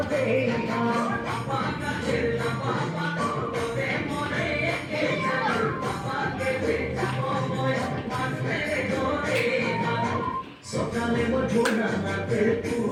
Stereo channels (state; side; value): identical; both; correlation 1.00